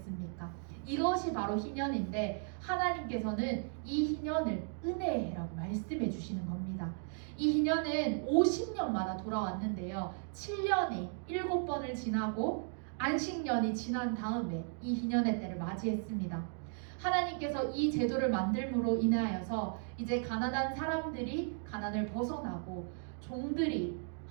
이것이 바로 희년인데 하나님께서는 이 희년을 은혜의 해라고 말씀해 주시는 겁니다. 이 희년은 50년마다 돌아왔는데요. 7년이 7번을 지나고 안식년이 지난 다음에 이 희년의 때를 맞이했습니다. 하나님께서 이 제도를 만들므로 인하여서 이제 가난한 사람들이 가난을 벗어나고 종들이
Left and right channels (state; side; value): silent; left; 54 dB below the other